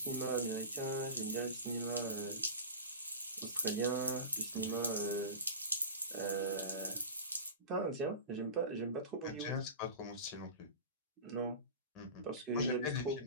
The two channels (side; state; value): both; inverted; correlation -0.30